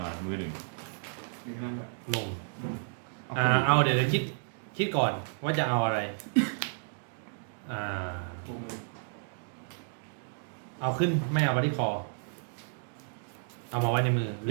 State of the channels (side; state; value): left; silent; digital silence